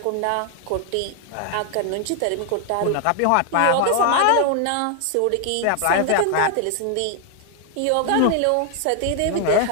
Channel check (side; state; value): both; different; correlation 0.00